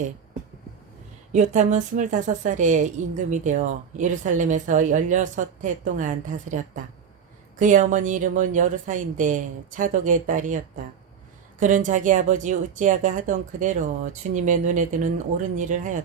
요탐은 25살에 임금이 되어 예루살렘에서 16해 동안 다스렸다. 그의 어머니 이름은 여르사인데 차독의 딸이었다. 그는 자기 아버지 우찌야가 하던 그대로 주님의 눈에 드는 옳은 일을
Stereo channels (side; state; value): left; quieter; 7.3 dB